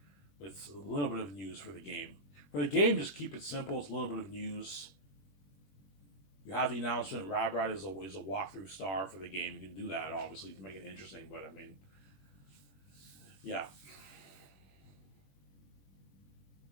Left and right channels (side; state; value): right; late; 21 ms